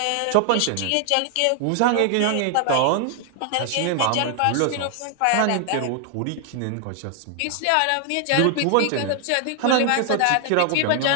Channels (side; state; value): both; different; correlation 0.00